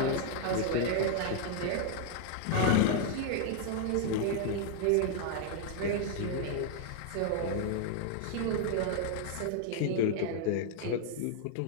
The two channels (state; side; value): different; both; correlation 0.00